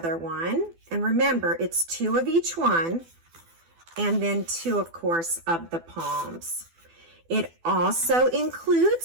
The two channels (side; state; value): left; late; 12 ms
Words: one. And remember, it's 2 of each one, and then 2, of course, of the palms. It also